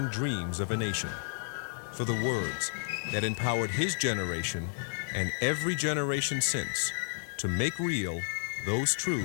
dreams of a nation, for the words that empowered his generation and every generation since to make real those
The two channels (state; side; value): silent; right; digital silence